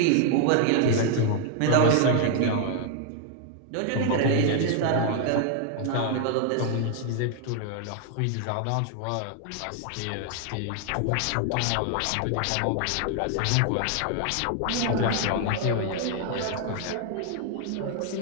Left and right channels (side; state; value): both; different; correlation 0.00